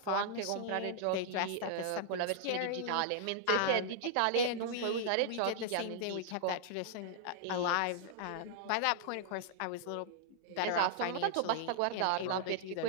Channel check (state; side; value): different; both; correlation -0.01